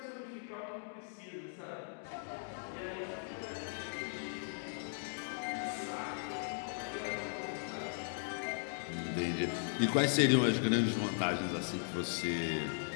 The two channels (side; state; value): right; silent; digital silence